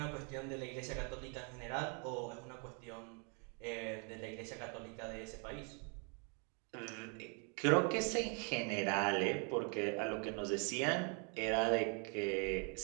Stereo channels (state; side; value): quieter; left; 37.1 dB